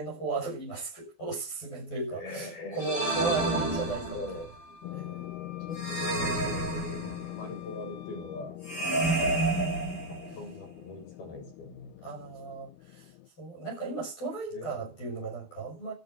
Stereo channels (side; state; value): right; late; 12 ms